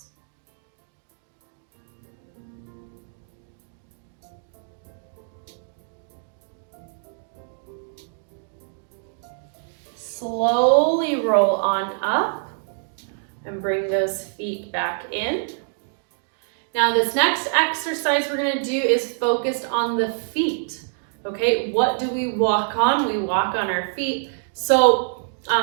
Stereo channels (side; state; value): left; silent; digital silence